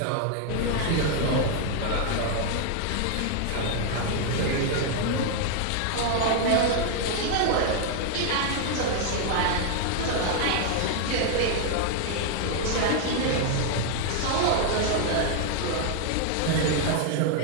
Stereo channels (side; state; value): both; different; correlation 0.00